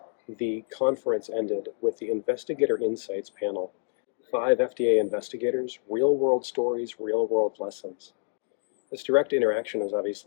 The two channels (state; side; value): silent; right; digital silence